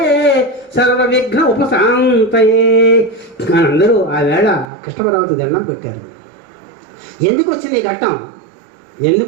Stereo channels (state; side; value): drops out; left; at 4.7 s